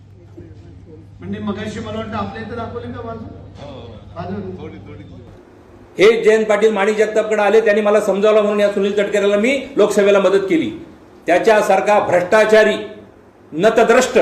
म्हणजे मगाशी मला वाटतं आपल्या इथे दाखवले का बाजू हे जयंत पाटील माणिक जगतापकडे आले, त्यांनी मला समजावलं म्हणून या सुनील तटकरेला मी लोकसभेला मदत केली. त्याच्यासारखा भ्रष्टाचारी नतद्रष्ट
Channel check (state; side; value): identical; both; correlation 1.00